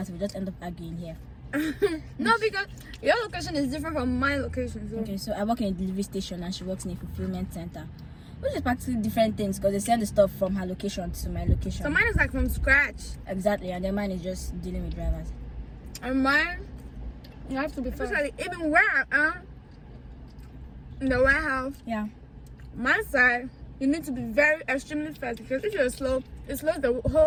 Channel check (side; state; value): both; identical; correlation 1.00